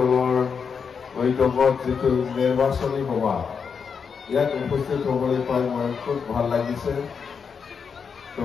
বৈঠকত যিটো নিৰ্বাচনী সভা ইয়াত উপস্থিত হ'বলৈ পাই মই খুব ভাল লাগিছে। তো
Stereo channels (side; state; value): right; quieter; 6.2 dB